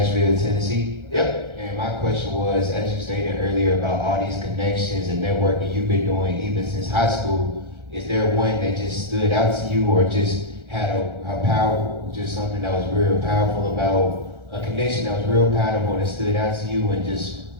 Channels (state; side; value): late; left; 1.4 ms